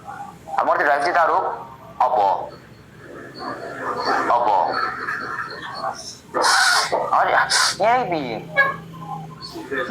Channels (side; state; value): both; identical; correlation 1.00